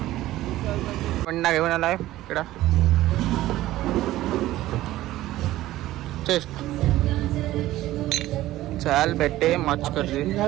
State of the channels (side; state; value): left; quieter; 15.5 dB